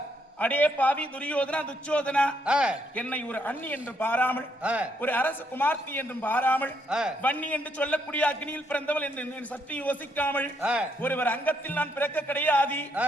அடே பாவி துரியோதனா துச்சோதனா, என்னை ஒரு அண்ணி என்று பாராமல் ஒரு அரச குமார்த்தி என்றும் பாராமல் வன்னி என்று சொல்லக்கூடிய அக்னியில் பிறந்தவள் என்று சற்று யோசிக்காமல் ஒருவர் அங்கத்தில் நான் பிறக்க கிடையாது.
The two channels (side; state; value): both; normal; correlation 0.74